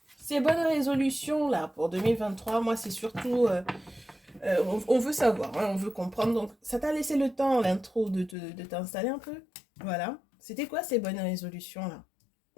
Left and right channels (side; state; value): right; drops out; at 8.3 s